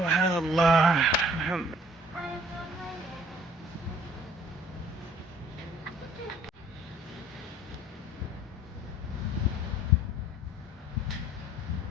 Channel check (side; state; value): both; normal; correlation 0.55